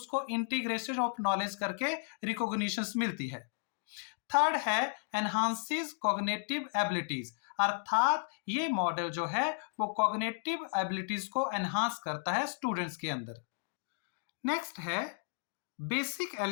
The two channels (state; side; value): silent; right; digital silence